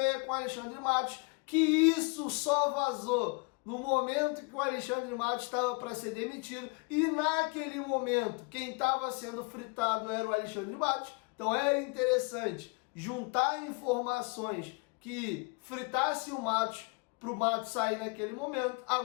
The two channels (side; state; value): right; quieter; 30.8 dB